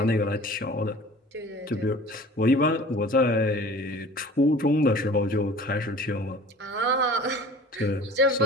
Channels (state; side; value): normal; both; correlation 0.44